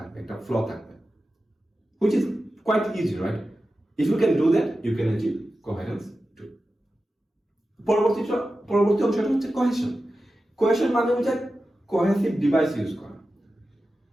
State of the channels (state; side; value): normal; both; correlation 0.93